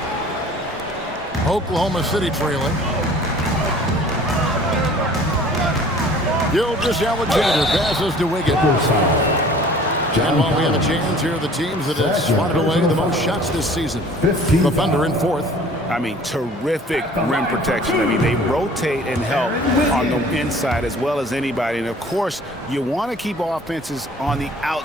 Oklahoma City trailing. Gilgeous-Alexander passes to Wiggins. And while we have a chance, here are the teams that have swatted away the most shots this season. The Thunder in 4th. I mean, terrific rim protection. I mean, they rotate and help on the inside as well as anybody. And, of course, you want to keep offenses on the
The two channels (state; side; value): normal; both; correlation 0.49